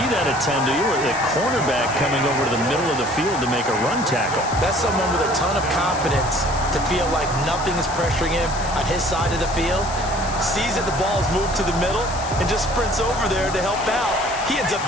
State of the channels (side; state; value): left; noise; hiss, 12 dB below the sound